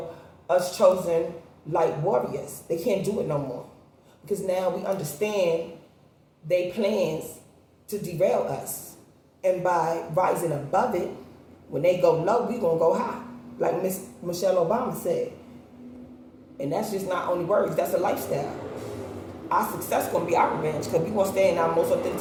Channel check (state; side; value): identical; both; correlation 1.00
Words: us chosen light warriors. They can't do it no more. Because now we understand their plans to derail us. And by rising above it, when they go low, we going to go high. Like Miss Michelle Obama said. And that's just not only words, that's a lifestyle. Our success going to be our revenge, because we going to stay in our most